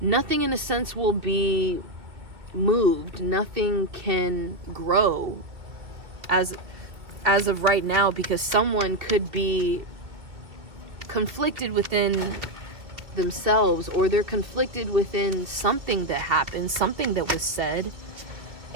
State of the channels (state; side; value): late; left; 2.3 ms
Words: a sense will be moved. Nothing can grow as of right now, because someone could be conflicted within themselves, or they're conflicted within something that happened, something that was said,